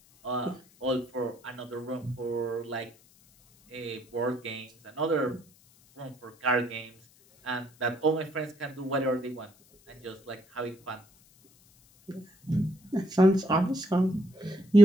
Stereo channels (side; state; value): left; noise; hiss, 29 dB below the sound